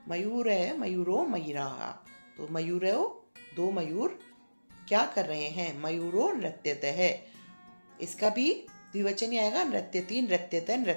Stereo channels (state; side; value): inverted; both; correlation -1.00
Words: मयूर है, मयूरो मयूराः, तो मयूरो दो मयूर क्या कर रहे हैं, मयूरो नृत्यत है। इसका भी द्विवचन ही आएगा, नृत्यति नृत्यत